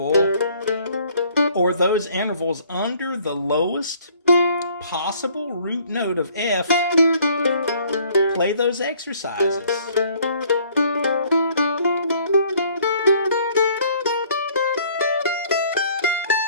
or those intervals under the lowest possible root note of F, play those exercises.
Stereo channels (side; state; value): both; inverted; correlation -0.59